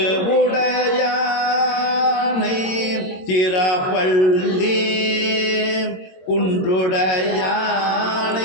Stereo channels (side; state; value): right; late; 22 ms